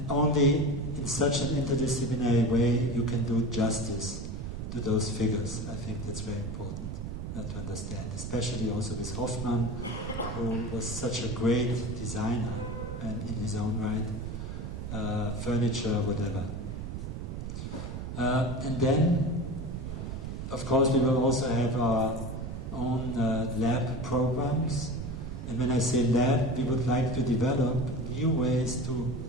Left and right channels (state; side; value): noise; right; rumble, 6 dB below the sound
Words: only in such an interdisciplinary way you can do justice to those figures. I think that's very important to understand, especially also with Hoffmann, who was such a great designer and in his own right, furniture, whatever. And then, of course, we will also have our own lab programs. And when I say lab, we would like to develop new ways to